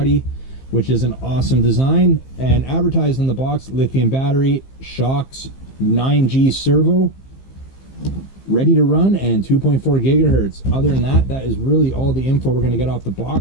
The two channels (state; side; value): late; right; 15 ms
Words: which is an awesome design. And advertised on the box, lithium battery, shocks, 9G servo, ready to run, and 2.4 gigahertz. Other than that, that is really all the info we're going to get off the